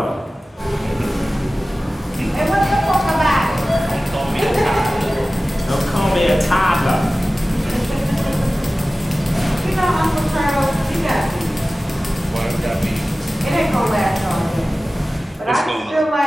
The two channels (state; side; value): normal; both; correlation 0.96